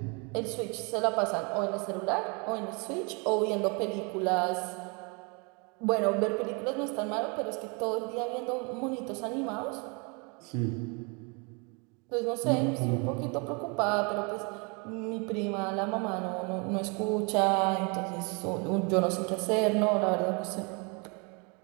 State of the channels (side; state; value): left; quieter; 32.3 dB